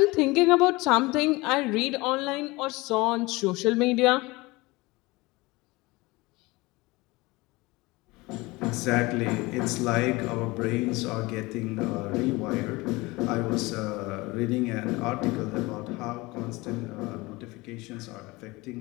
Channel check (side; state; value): right; quieter; 22.5 dB